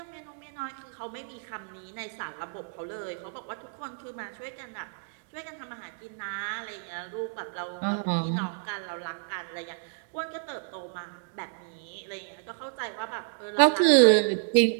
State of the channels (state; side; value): silent; left; digital silence